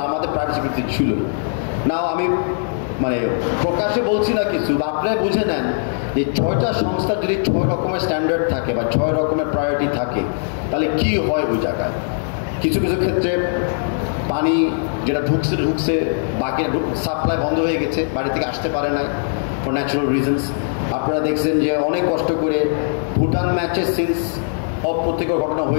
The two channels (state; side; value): silent; right; 66 dB below the other